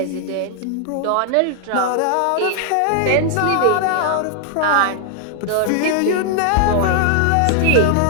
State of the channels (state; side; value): different; both; correlation 0.00